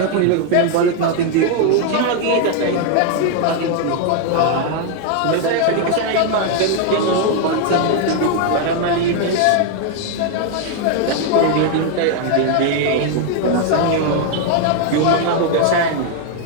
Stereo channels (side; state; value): both; different; correlation 0.00